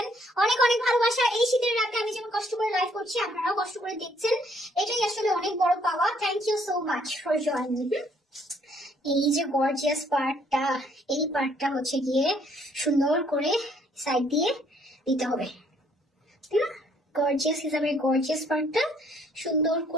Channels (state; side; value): normal; both; correlation 0.65